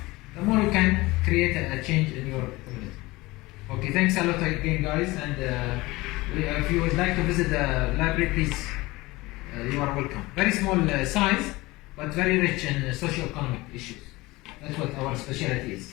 the more you can create a change in your community. Okay, thanks a lot again, guys. And if you would like to visit the library, please, you are welcome. Very small size, but very rich in socio-economic issues. That's what our specialty is.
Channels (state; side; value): quieter; right; 20.9 dB